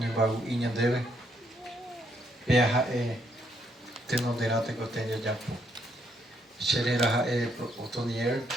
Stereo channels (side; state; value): both; normal; correlation 0.73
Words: inha dele, perra tenoderate que eu tenho de apo. Xerera otonier,